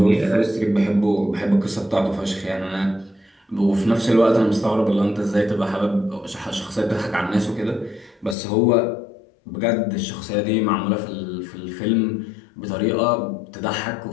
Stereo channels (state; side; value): drops out; right; at 8.3 s